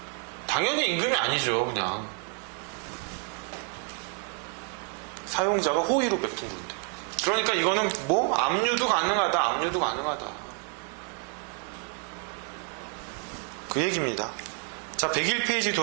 당연히 임금이 아니죠. 그냥 사용자가 호의로 베푼 건데. 그러니까 이거는 압류도 가능하다. 그 얘기입니다. 자, 101페이지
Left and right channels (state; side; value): quieter; left; 39.1 dB